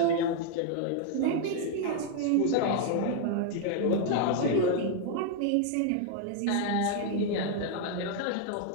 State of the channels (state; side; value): different; both; correlation 0.00